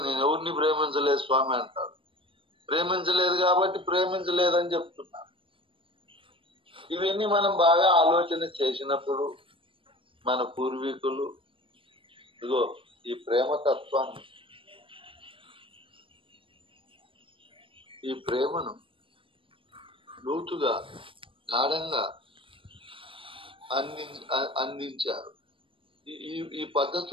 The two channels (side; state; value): left; late; 0.25 ms